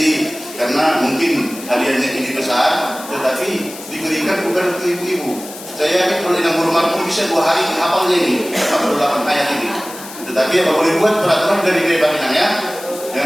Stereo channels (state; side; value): noise; left; hiss, 15 dB below the sound